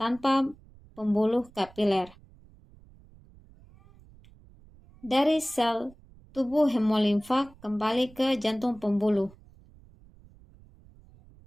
pembuluh kapiler. Dari sel tubuh hemolimfa kembali ke jantung pembuluh.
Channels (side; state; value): right; noise; rumble, 25 dB below the sound